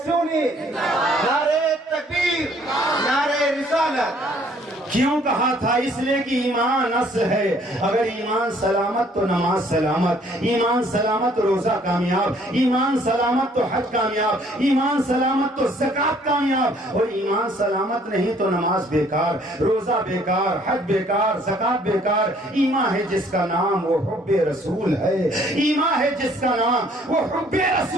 سنی، نعرے تکبیر، نعرے رسالت۔ کیوں کہا تھا؟ اس لیے کہ ایمان اصل ہے، اگر ایمان سلامت تو نماز سلامت، ایمان سلامت روزہ کامیاب، ایمان سلامت تو حج کامیاب، ایمان سلامت تو زکوٰۃ کامیاب، اور ایمان سلامت نہیں تو نماز بیکار، روزہ بیکار، حج بیکار، زکوٰۃ بیکار۔ ایمان ہے جس کا نام وہ حب رسول ہے، ایمان ہے جس کا نام وہ حب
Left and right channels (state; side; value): normal; both; correlation 0.61